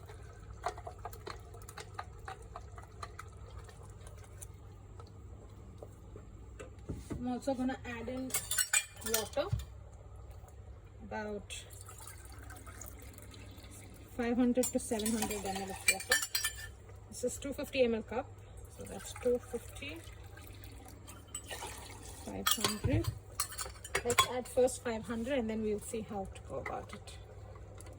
I'm also going to add in water, about 500 to 700 ml of water. This is 250 ml cup, so that's 250, 500. Let's add first 500 and then we'll see how to go about it.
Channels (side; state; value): both; identical; correlation 1.00